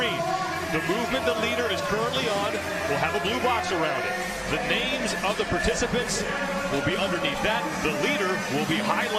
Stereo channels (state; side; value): identical; both; correlation 1.00